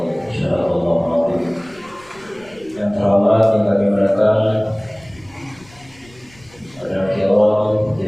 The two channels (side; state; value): left; noise; rumble, 26 dB below the sound